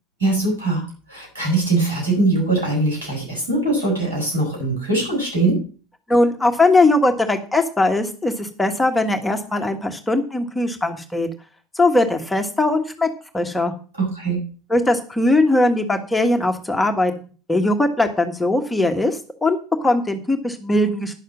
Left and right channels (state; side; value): normal; both; correlation 0.68